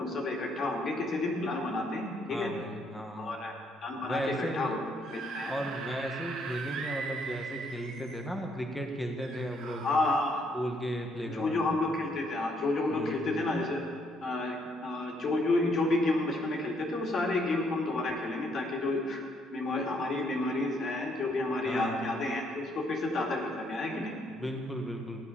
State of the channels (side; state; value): both; normal; correlation 0.70